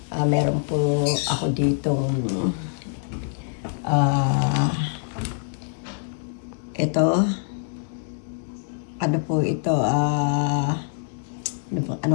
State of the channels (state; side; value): silent; right; digital silence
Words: Meron po ako ditong ito. Ano po ito?